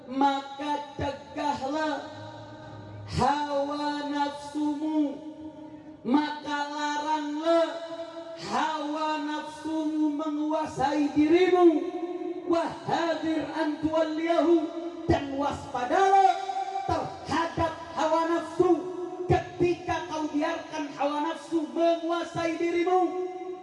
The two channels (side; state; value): both; identical; correlation 1.00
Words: maka cegahlah hawa nafsumu, maka laranglah hawa nafsumu menguasai dirimu. Wahadir an tuwalliyahu, dan waspadalah terhadap hawa nafsu ketika kau biarkan hawa nafsu menguasai dirimu.